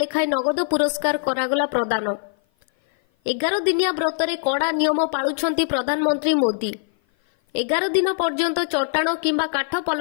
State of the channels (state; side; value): silent; right; 56 dB below the other